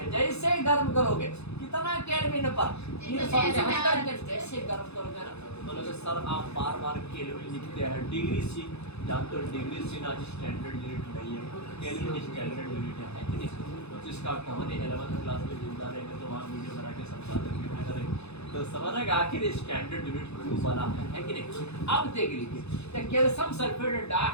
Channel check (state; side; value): late; right; 0.80 ms